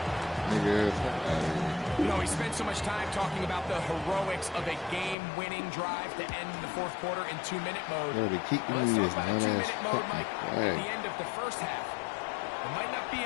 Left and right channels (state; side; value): drops out; right; at 5.2 s